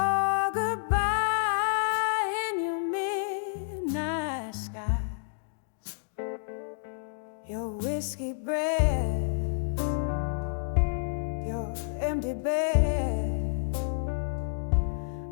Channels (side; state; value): right; silent; digital silence